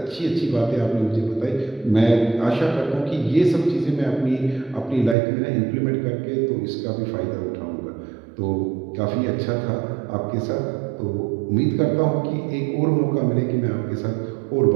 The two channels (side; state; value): left; drops out; at 5.2 s